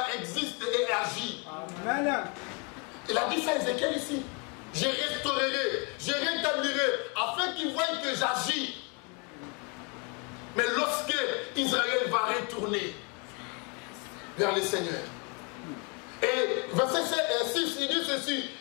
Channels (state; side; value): quieter; right; 33.4 dB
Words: existe et agit. Amen. Il a dit ça à Ézéchiel ici. Je restaurerai, je rétablirai, afin qu'il voie que j'agis. Mais lorsque Israël va retourner vers le Seigneur. Et verset 6, il dit ceci.